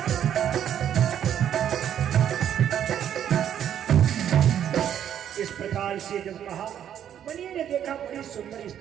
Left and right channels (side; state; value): left; quieter; 9.9 dB